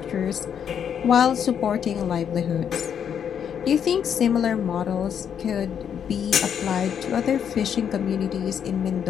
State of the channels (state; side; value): quieter; right; 8.3 dB